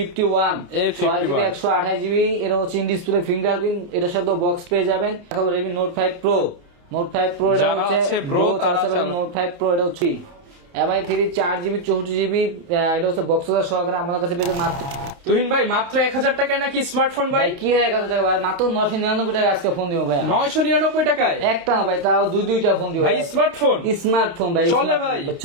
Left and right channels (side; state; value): left; late; 29 ms